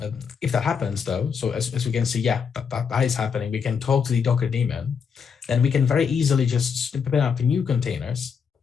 if that happens though, so as we can see, yeah, that is happening, we can talk to the Docker daemon, then we can very easily just spin up new containers.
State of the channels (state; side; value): quieter; right; 6.5 dB